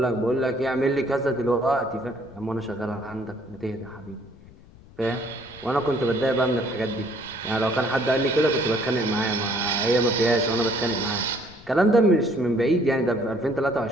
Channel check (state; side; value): noise; left; rumble, 22 dB below the sound